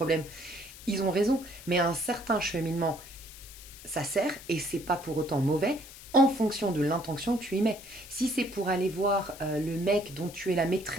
Ils ont raison. Mais à un certain cheminement, ça sert et c'est pas pour autant mauvais en fonction de l'intention que tu y mets. Si c'est pour aller voir le mec dont tu es la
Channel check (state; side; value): noise; left; hiss, 17 dB below the sound